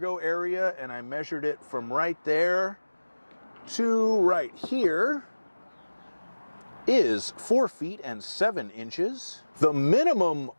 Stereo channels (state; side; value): inverted; both; correlation -1.00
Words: area, and I measured it from right there to right here, is 4 feet and 7 inches. The minimum